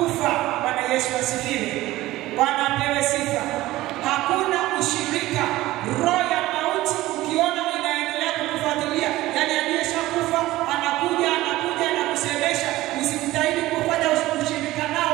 Bwana Yesu asifiwe. Bwana apewe sifa. Hakuna ushirika. Roho ya mauti ukiona inaendelea kukufuatilia, yani aliyeshakufa anakuja na kusemesha, usimtahidi kufanya ushirika nao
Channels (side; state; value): left; quieter; 17.0 dB